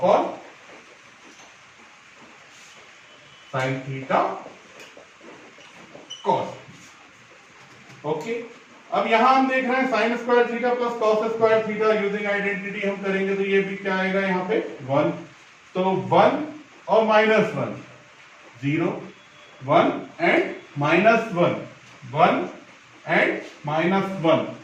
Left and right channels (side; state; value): both; identical; correlation 1.00